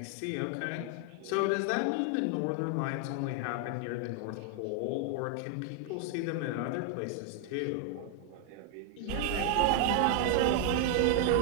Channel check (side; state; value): both; different; correlation 0.00